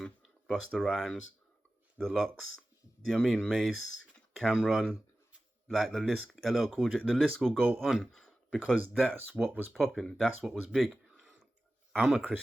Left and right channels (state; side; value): normal; both; correlation 0.95